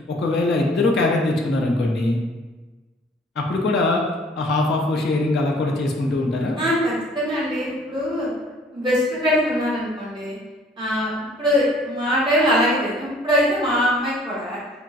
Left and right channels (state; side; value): normal; both; correlation 0.55